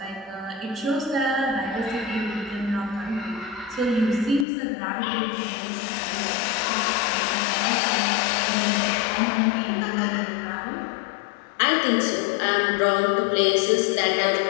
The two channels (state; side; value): drops out; right; at 4.5 s